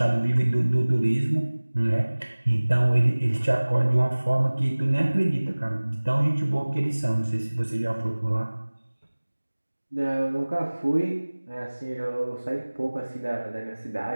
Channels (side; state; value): both; inverted; correlation -1.00